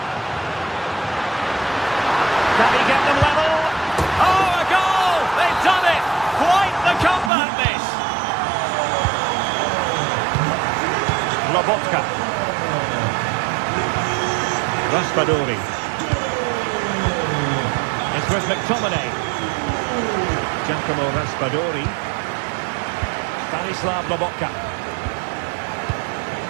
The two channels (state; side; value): drops out; left; at 7.3 s